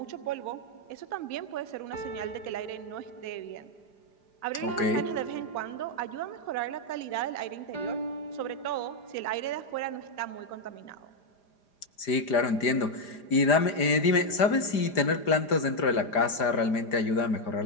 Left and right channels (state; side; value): late; right; 4.9 ms